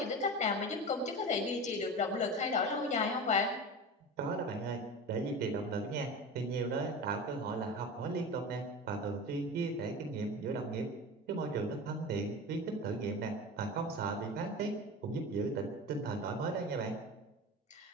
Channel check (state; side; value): normal; both; correlation 0.29